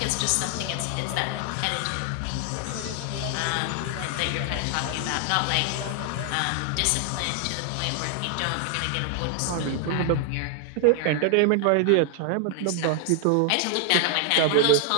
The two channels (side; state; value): both; different; correlation 0.00